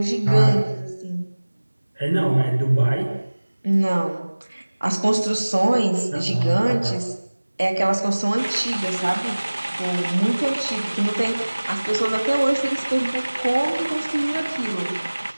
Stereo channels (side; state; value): both; inverted; correlation -1.00